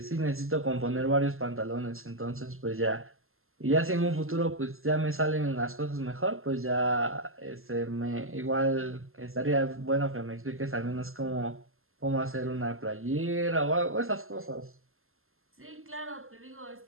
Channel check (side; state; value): left; late; 0.61 ms